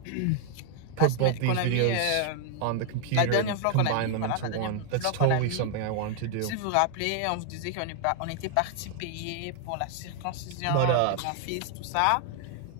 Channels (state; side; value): different; both; correlation 0.00